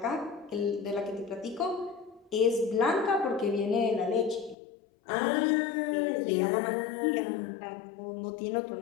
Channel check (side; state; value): right; drops out; at 4.5 s